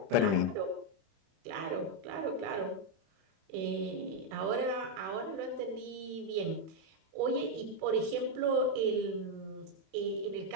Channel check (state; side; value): late; left; 31 ms